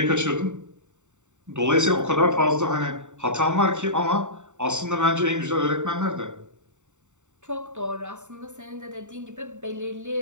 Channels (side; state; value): left; late; 0.84 ms